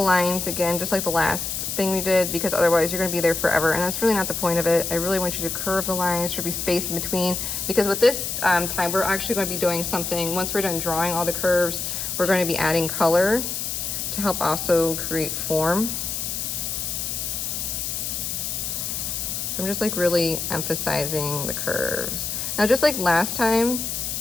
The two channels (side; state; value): left; noise; hiss, 3 dB below the sound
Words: lines again, just like the last thing we did, because otherwise you're going to be there forever, and that's really not the point of it. I really want you to curve the lines. There should be space in between, because with this time we're actually going to be doing something. Once we're done drawing all the curves, we're going to be adding color to help also create form. So I'm just like really emphasizing the curves. Now, just like last time,